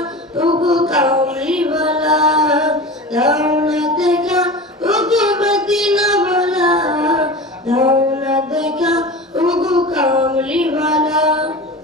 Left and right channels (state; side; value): normal; both; correlation 0.32